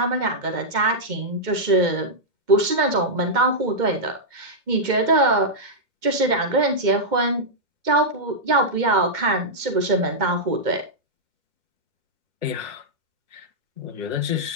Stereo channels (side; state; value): left; late; 2.2 ms